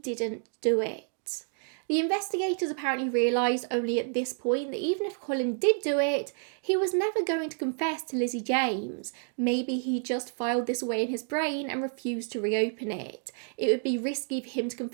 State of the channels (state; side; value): silent; left; 58 dB below the other